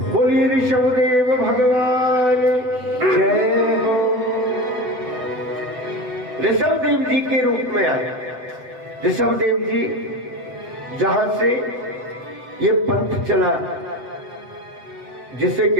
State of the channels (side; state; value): left; late; 8.0 ms